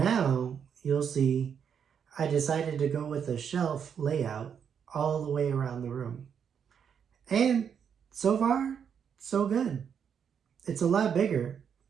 you'll see, I decided to go with a shelf layout all the way around the room. And so far, so good. It's a lot bigger.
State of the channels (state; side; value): quieter; left; 7.6 dB